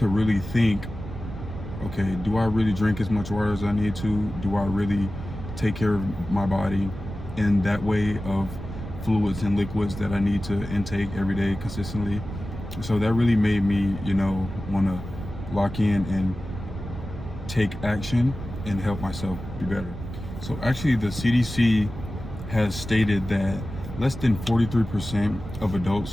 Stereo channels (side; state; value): right; noise; rumble, 10 dB below the sound